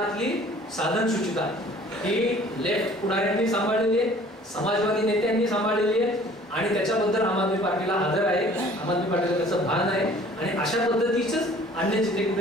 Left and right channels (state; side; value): normal; both; correlation 0.52